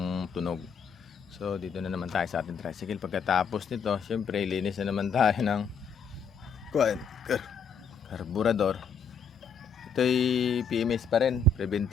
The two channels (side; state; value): right; quieter; 5.1 dB